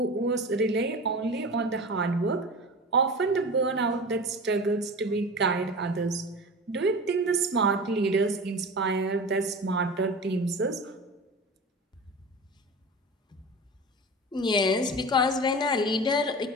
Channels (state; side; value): normal; both; correlation 0.32